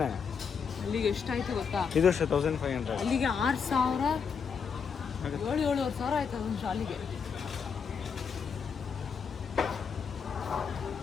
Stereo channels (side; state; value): right; quieter; 6.3 dB